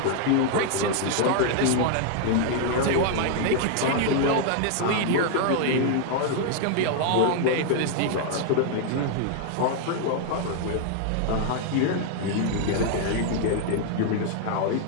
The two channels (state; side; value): different; both; correlation 0.00